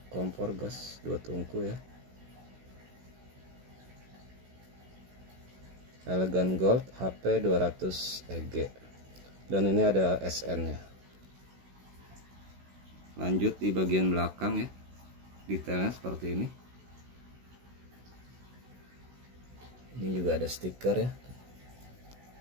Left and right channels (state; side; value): late; left; 16 ms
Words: kompor gas 2 tungku ya, Elegan Gold HP 200 EG. Dan ini ada SN nya. Lanjut di bagian belakang ya, detailnya seperti ini. Ini juga ada stiker ya,